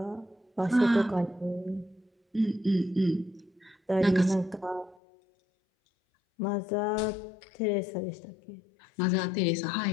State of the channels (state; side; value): drops out; right; at 5.0 s